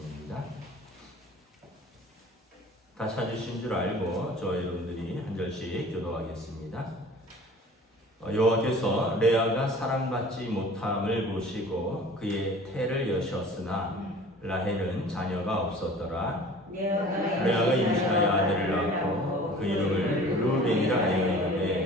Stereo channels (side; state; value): both; normal; correlation 0.45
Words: 다 찾으신 줄 알고 저 여러분들이 한 절씩 교도하겠습니다. 여호와께서 레아가 사랑받지 못함을 보시고 그의 태를 여셨으나 라헬은 자녀가 없었더라. 레아가 임신하여 아들을 낳고 그 이름을 루벤이라 하여